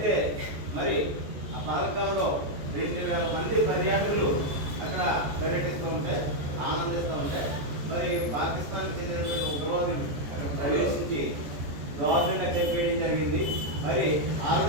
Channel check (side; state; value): left; late; 14 ms